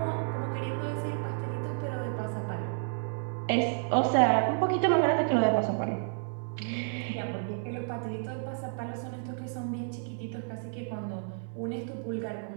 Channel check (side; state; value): left; silent; 57 dB below the other